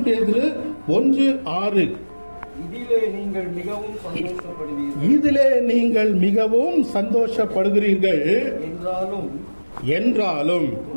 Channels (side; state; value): both; inverted; correlation -1.00